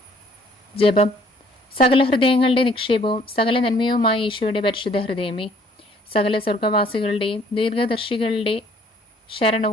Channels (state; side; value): normal; both; correlation 0.60